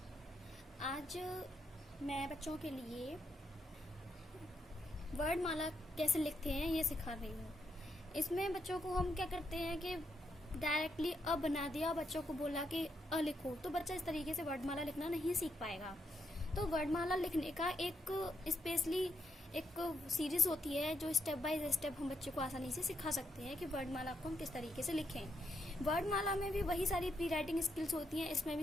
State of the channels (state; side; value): normal; both; correlation 0.79